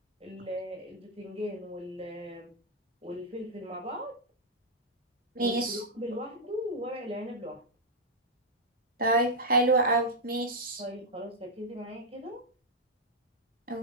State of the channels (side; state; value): both; normal; correlation -0.04